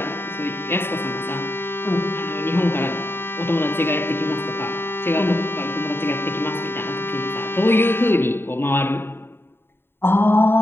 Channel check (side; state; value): right; late; 0.11 ms